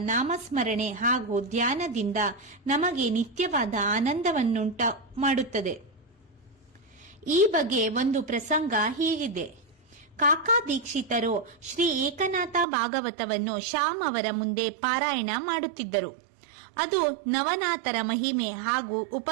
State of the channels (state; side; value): drops out; left; at 12.7 s